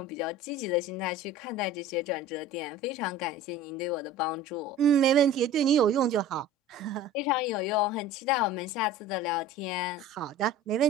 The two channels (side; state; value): both; normal; correlation 0.40